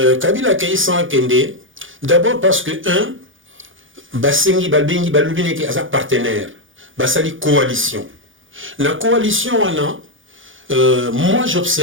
a accueilli sans Akende, d'abord parce que, Basengi Balbengi Balubine qui est partenaire, Basali coalition. La coalition, moi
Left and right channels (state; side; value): late; left; 0.57 ms